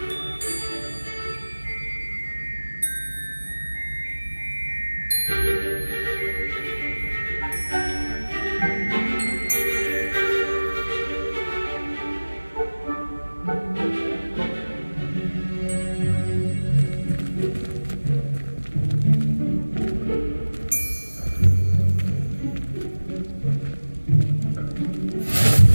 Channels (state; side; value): inverted; both; correlation -1.00